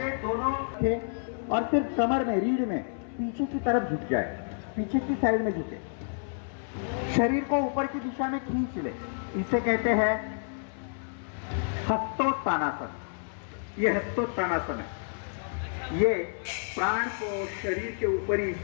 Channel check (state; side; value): silent; right; 58 dB below the other